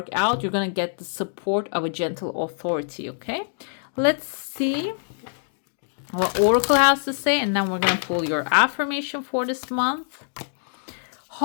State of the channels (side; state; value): right; silent; digital silence